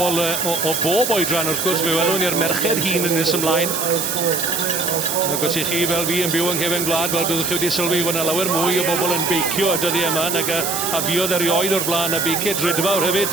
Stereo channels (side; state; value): right; noise; hiss, 2 dB below the sound